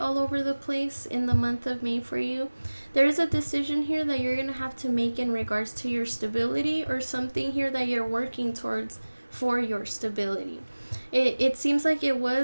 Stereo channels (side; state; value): both; inverted; correlation -1.00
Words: over the place in the month of May for you. There is a decision here that you're going to have to make in regards to your stability, or something here that you're working towards for your stability. It seems like it